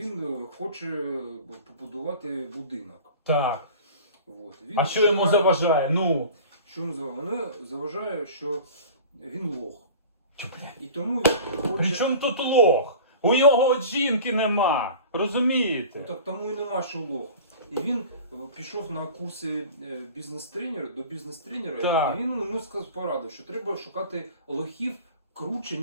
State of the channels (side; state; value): both; inverted; correlation -0.40